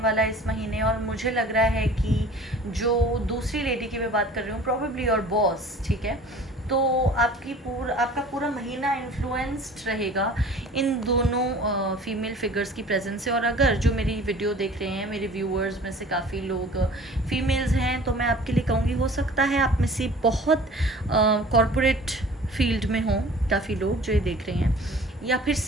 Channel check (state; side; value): normal; both; correlation 0.46